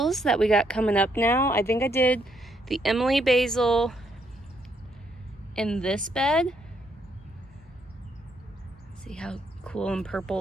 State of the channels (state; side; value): normal; both; correlation 0.73